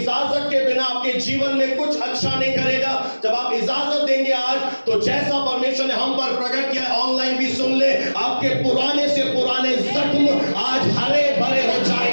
के बिना आपके जीवन में कुछ अच्छा नहीं करेगा। जब आप इजाजत देंगे आज, तो जैसा परमेश्वर ने हम पर प्रकट किया, ऑनलाइन भी सुन ले, आपके पुराने से पुराने जख्म आज हरे भरे हो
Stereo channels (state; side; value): inverted; both; correlation -1.00